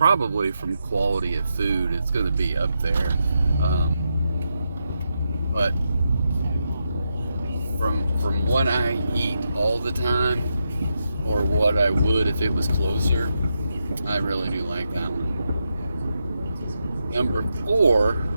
from quality of food, it's gonna be up there. But from what I eat all the time, or what I would if it was closer, I really do like that one. Number 4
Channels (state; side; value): inverted; both; correlation -0.85